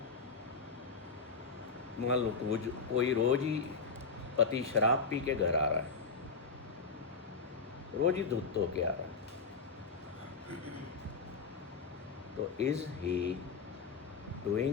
मान लो कोई रोज ही पति शराब पी के घर आ रहा है, रोज ही धुत होके आ रहा है, तो is he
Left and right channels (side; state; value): right; quieter; 4.6 dB